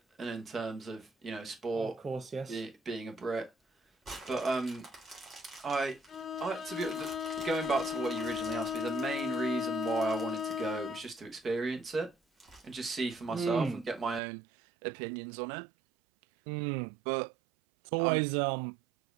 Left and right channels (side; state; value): left; drops out; at 14.2 s